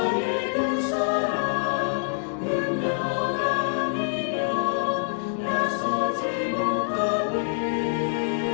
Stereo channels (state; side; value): silent; right; 61 dB below the other